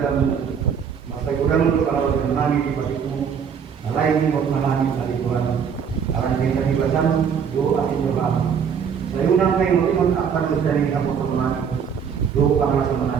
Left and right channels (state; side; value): quieter; left; 7.1 dB